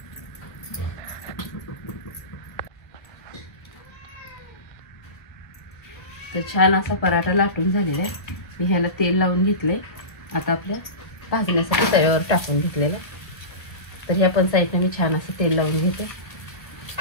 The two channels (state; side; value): late; right; 1.2 ms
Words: तर छान असा पराठा लाटून झालेला आहे। मी ह्याला तेल लावून घेतलंय। आता आपल्या भाजण्यासाठी तव्यावर टाकून घेतलेलं आहे। तर ह्या पण साईडने मी छान असं तेल लावून घेते।